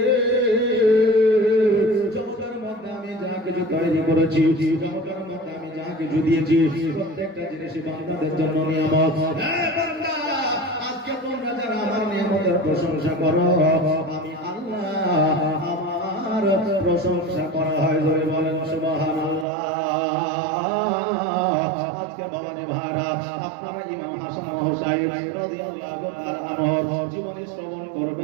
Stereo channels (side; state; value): left; drops out; at 19.5 s